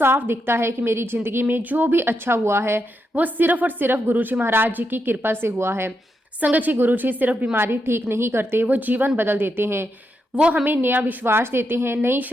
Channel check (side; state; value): both; normal; correlation 0.83